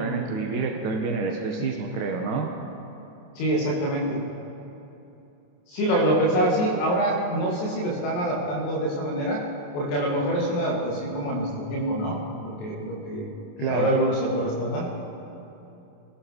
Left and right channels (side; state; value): right; late; 28 ms